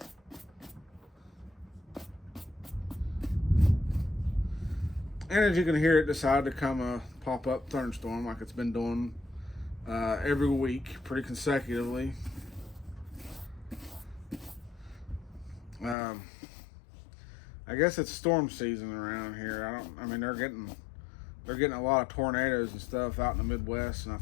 and as you can hear, it decided to come a pop-up thunderstorm like it's been doing every week, pretty consecutively. I guess it's storm season around here. I mean, they're getting a lot of tornadoes and stuff out in the Midwest, and I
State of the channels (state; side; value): drops out; right; at 16.0 s